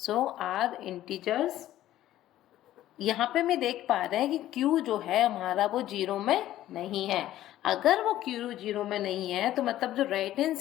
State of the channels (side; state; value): right; quieter; 13.6 dB